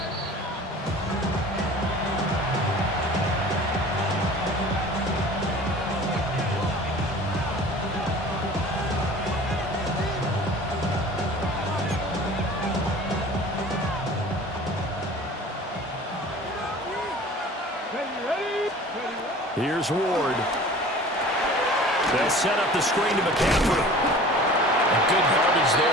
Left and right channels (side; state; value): both; normal; correlation 0.43